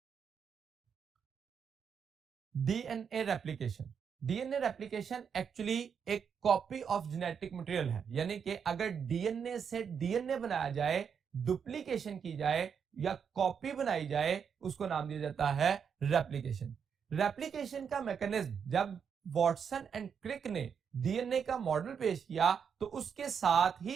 DNA replication. DNA replication actually एक कॉपी ऑफ जेनेटिक मटेरियल है, यानी कि अगर डीएनए से डीएनए बनाया जाए, डुप्लीकेशन की जाए या कॉपी बनाई जाए, उसको नाम दिया जाता है रेप्लिकेशन। रेप्लिकेशन का मैकेनिज्म जब वॉटसन एंड क्रिक ने डीएनए का मॉडल पेश किया तो उसके साथ ही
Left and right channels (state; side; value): quieter; left; 7.0 dB